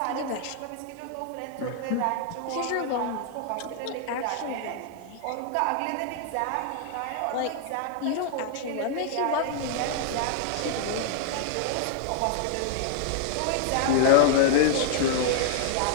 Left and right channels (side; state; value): both; different; correlation -0.01